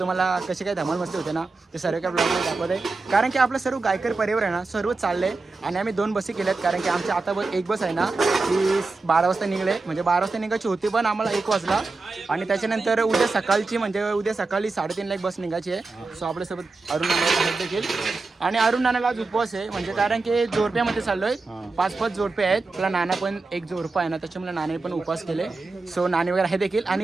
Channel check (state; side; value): quieter; left; 3.8 dB